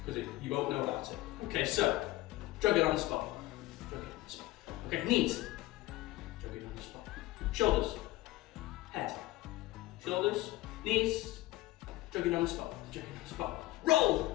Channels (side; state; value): right; quieter; 18.1 dB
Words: because you won't know about it. Okay, so jogging on the spot. Jogging on the spot. Okay, knees. Jogging on the spot. shoulders, head, shoulders, knees, jogging on the spot, jogging on the spot.